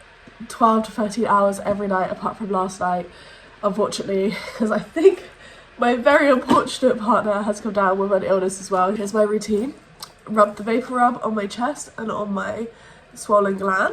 12 to 13 hours every night apart from last night, unfortunately, because I think my very unfortunate partner has come down with an illness as well. Here's my routine. Rub the vapor rub on my chest and on my swollen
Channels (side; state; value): both; identical; correlation 1.00